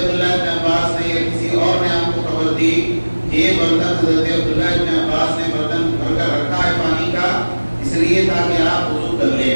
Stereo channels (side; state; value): both; inverted; correlation -1.00